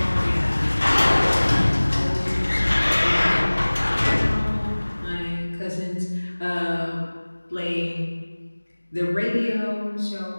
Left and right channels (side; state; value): both; inverted; correlation -1.00